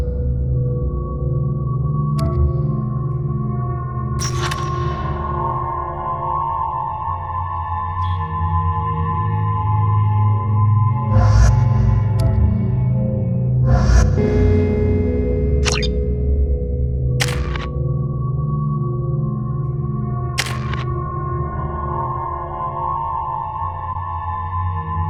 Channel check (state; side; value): identical; both; correlation 1.00